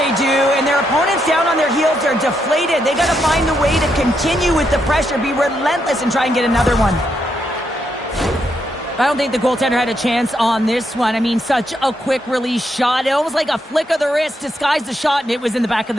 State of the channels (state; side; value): normal; both; correlation 0.79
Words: do, and their opponents down on their heels are deflated. They got to find a way to continue with the pressure, be relentless, and try and get another one. I don't think the goaltender had a chance on this one. I mean, such a quick release shot. It almost like a flick of the wrist disguised the shot, and it was in the back of